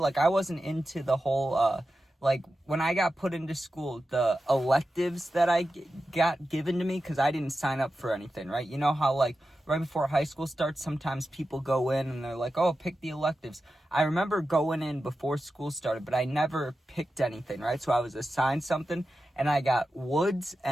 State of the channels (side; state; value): both; normal; correlation 0.92